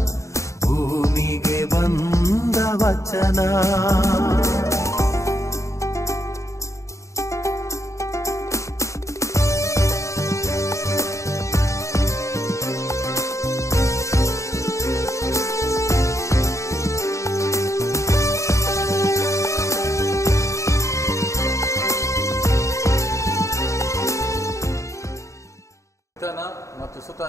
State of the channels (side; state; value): right; late; 0.15 ms